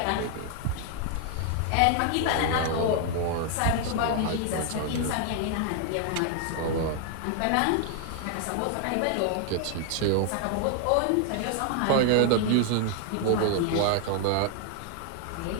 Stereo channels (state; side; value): different; both; correlation 0.00